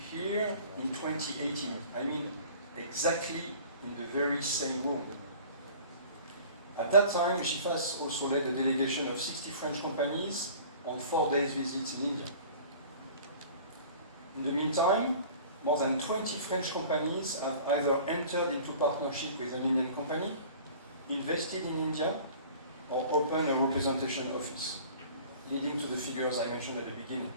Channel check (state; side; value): inverted; both; correlation -0.45